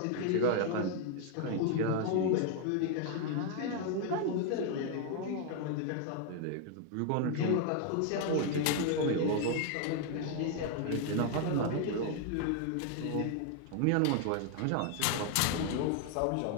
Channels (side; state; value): both; different; correlation 0.00